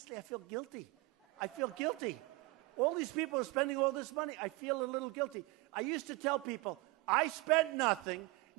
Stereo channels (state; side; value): quieter; left; 23.0 dB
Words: I feel guilty. I feel guilty. All these people are spending all this money. I feel a little guilty. I used to tell people, I spent nothing.